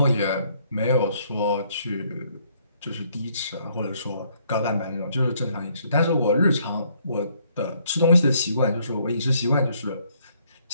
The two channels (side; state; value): both; inverted; correlation -0.67